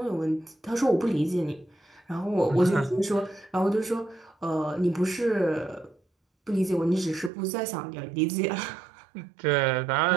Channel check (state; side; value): drops out; left; at 7.3 s